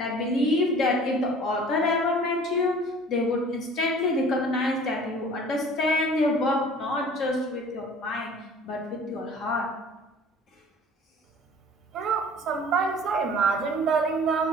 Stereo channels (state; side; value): normal; both; correlation 0.47